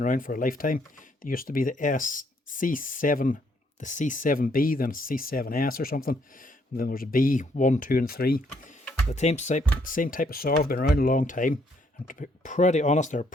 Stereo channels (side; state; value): both; normal; correlation 0.70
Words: around for a lifetime. They used to be the C7, the C7B, then C7S or something. And then there's a B, 1, 2, and 3. The same type of saw have been around a long time. And to be pretty honest, they're a